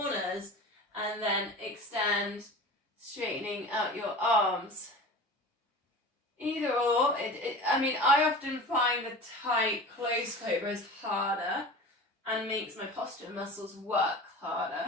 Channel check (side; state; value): both; normal; correlation 0.35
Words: and then extend, straightening out your arms. Either or. I often find the tight, close cobra is harder and makes my posture muscles work